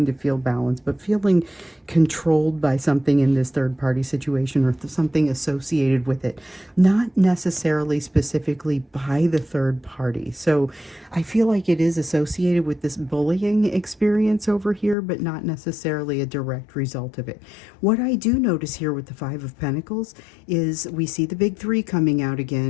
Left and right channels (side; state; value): right; drops out; at 15.0 s